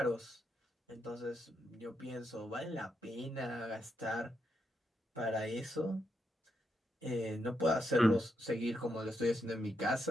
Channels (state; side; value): normal; both; correlation 0.81